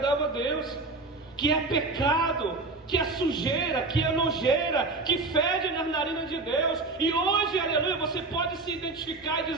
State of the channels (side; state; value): left; quieter; 3.4 dB